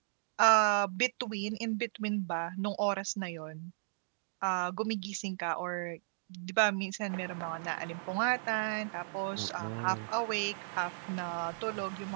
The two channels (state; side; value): silent; left; digital silence